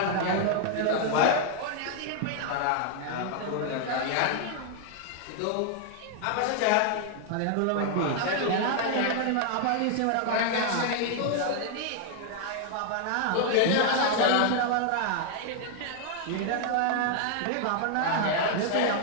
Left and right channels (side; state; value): both; different; correlation 0.00